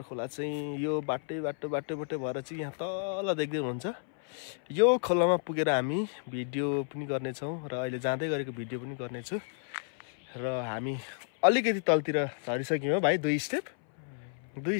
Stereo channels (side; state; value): right; silent; 57 dB below the other